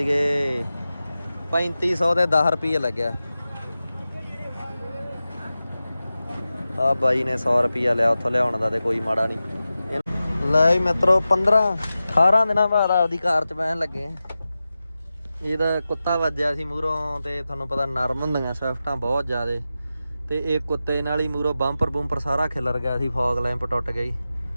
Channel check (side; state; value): both; inverted; correlation -0.94